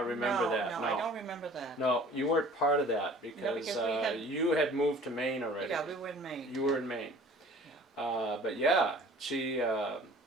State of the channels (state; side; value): normal; both; correlation 0.48